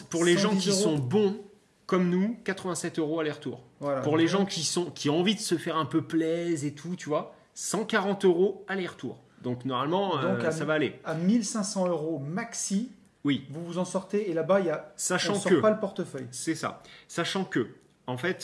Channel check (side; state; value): both; identical; correlation 1.00